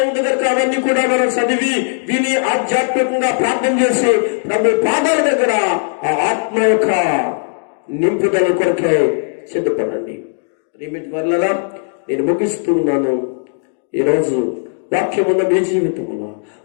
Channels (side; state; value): right; silent; digital silence